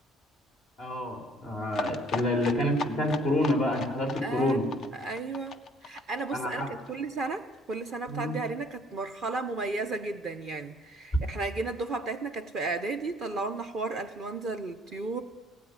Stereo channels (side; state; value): both; normal; correlation 0.58